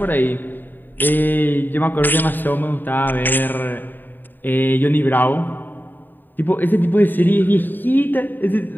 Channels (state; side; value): late; right; 0.091 ms